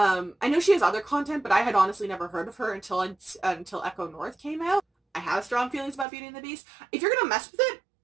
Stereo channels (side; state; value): left; drops out; at 6.1 s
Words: know she has other content, but I had honestly never heard of her until Echo North came out. I have strong feelings about Beauty and the Beast. If you're gonna mess with it,